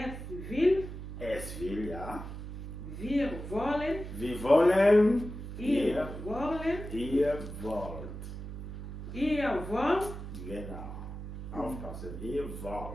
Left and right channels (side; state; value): right; noise; hum, 9 dB below the sound